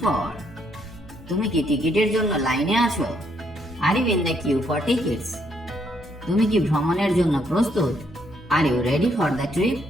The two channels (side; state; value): both; normal; correlation 0.72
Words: for? তুমি কি টিকিটের জন্য লাইনে আছো? Are you in the queue for tickets? তুমি কি ভ্রমণের জন্য প্রস্তুত? Are you ready for the trip?